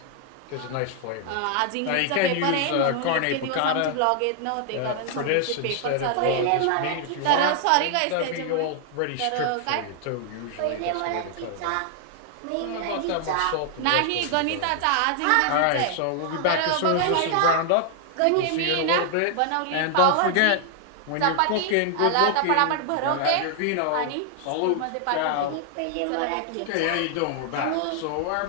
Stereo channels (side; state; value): both; different; correlation 0.00